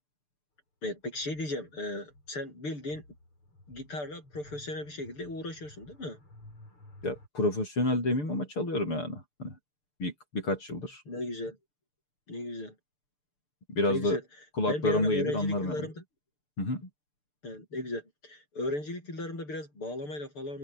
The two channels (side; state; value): right; late; 6.8 ms